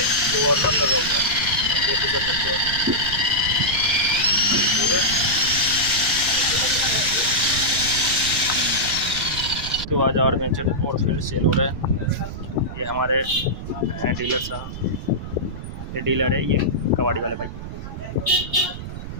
2 और नट लगा हुआ है, देख कर सकते हो। उसके बाद आर्मेचर और फील्ड सेल हो रहा है। ये हमारे हैं डीलर साहब, ये डीलर है, ये कबाड़ी वाले भाई।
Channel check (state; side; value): noise; right; rumble, 9 dB below the sound